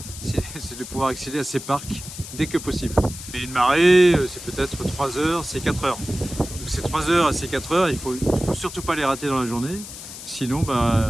c'est de pouvoir accéder à ces parcs dès que possible. Et une marée, c'est peut-être 3 heures, c'est 4 heures. Donc ces 3 heures et ces 4 heures, il faut surtout pas les rater dans la journée, sinon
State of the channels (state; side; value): noise; left; hiss, 12 dB below the sound